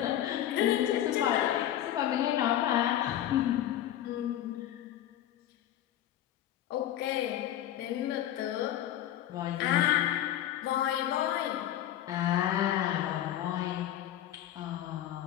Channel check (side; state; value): right; quieter; 12.0 dB